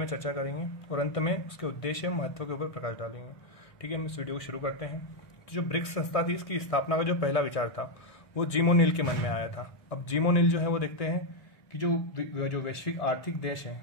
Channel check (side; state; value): right; late; 1.7 ms